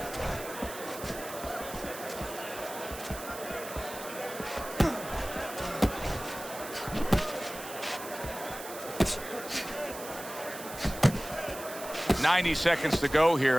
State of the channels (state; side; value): noise; right; hiss, 12 dB below the sound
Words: .90 seconds to go here